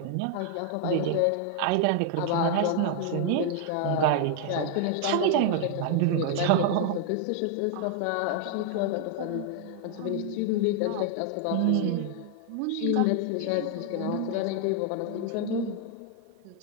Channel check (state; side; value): different; both; correlation 0.00